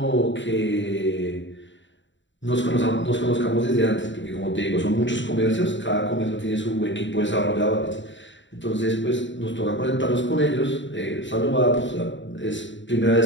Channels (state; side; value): late; right; 0.54 ms